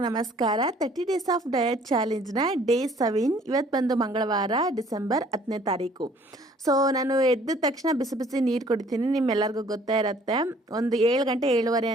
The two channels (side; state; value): both; normal; correlation 0.57